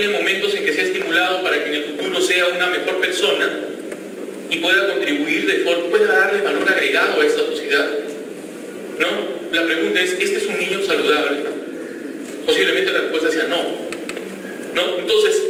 momentos en que sea estimulado para que en el futuro sea una mejor persona y pueda contribuir pueda darle valor agregado a esta sociedad, ¿no? La pregunta es, ¿este es un niño saludable? Posiblemente la respuesta sea no, ¿no? Entonces,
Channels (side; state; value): both; identical; correlation 1.00